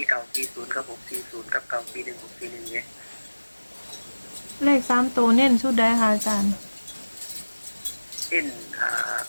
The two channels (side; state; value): both; inverted; correlation -1.00